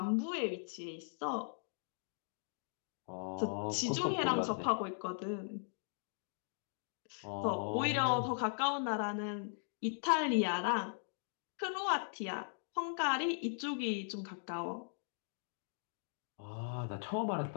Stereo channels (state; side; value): silent; right; digital silence